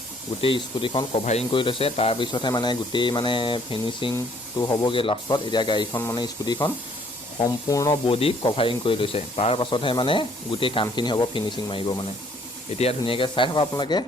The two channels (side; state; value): both; normal; correlation 0.62